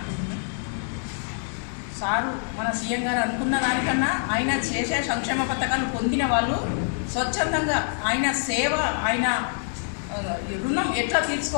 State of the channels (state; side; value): silent; right; digital silence